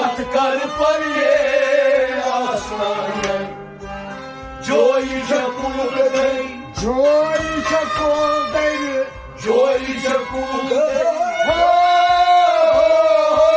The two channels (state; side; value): identical; both; correlation 1.00